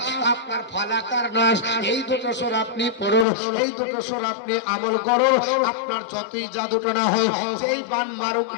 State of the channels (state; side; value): drops out; right; at 3.2 s